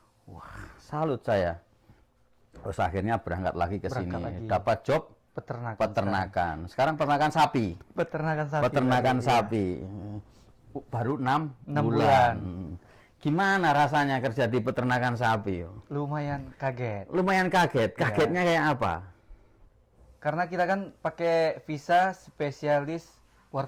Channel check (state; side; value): identical; both; correlation 1.00